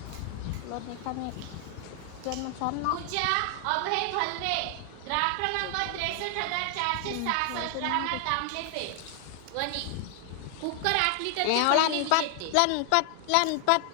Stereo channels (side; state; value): both; different; correlation 0.00